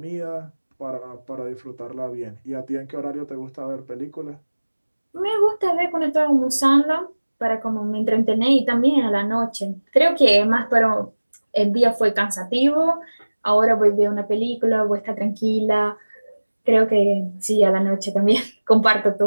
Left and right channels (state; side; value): inverted; both; correlation -1.00